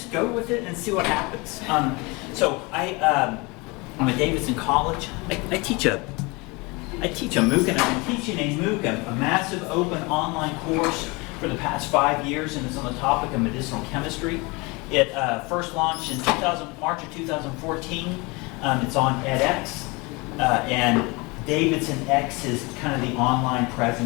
go with it and see what happens. I'm at Davidson College. I teach a MOOC, and I've been teaching a MOOC, a massive open online course for the past 5 years, and it's on the topic of medicinal chemistry. It first launched in March of 2014. It's on edX, and Davidson X is kind of the online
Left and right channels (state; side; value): quieter; right; 26.3 dB